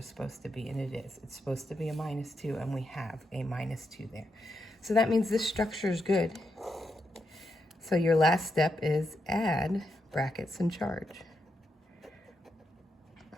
supposed to be, and it is. It's supposed to be a -2, and we have a -2 there. So that means this structure is good. So your last step is add brackets and charge.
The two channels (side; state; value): both; normal; correlation 0.83